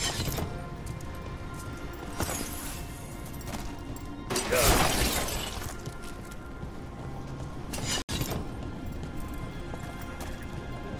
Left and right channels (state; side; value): identical; both; correlation 1.00